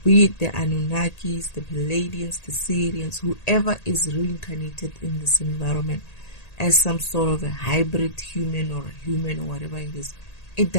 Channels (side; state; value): right; late; 1.8 ms